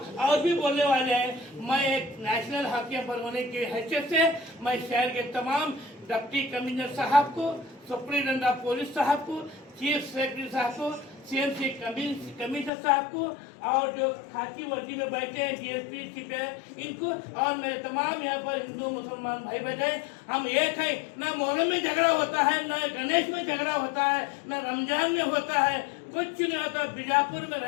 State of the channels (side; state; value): right; drops out; at 12.7 s